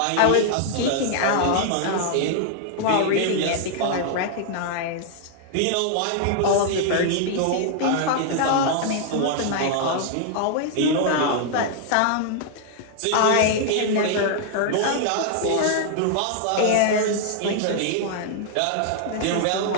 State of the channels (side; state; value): both; different; correlation -0.01